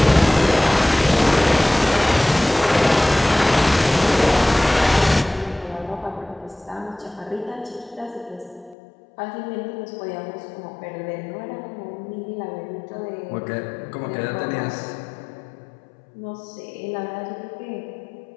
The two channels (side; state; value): right; drops out; at 8.8 s